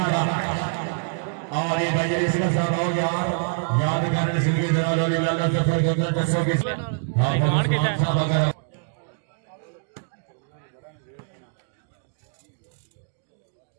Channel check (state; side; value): silent; left; digital silence